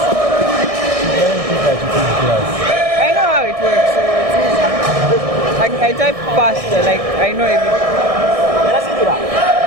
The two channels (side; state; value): left; late; 1.6 ms